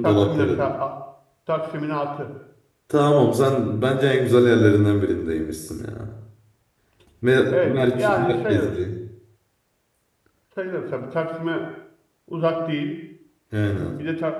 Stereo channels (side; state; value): both; identical; correlation 1.00